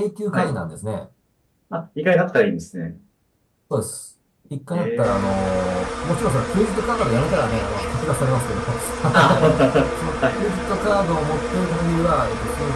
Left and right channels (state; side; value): identical; both; correlation 1.00